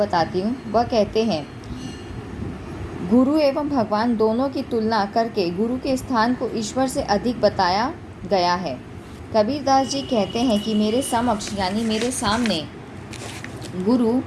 हूँ। वह कहते हैं, गुरु एवं भगवान दोनों की तुलना करके गुरु के स्थान को ईश्वर से अधिक बताया गया है। कबीरदास जी कहते हैं कि मेरे समक्ष यानी मेरे सामने गुरु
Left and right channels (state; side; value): identical; both; correlation 1.00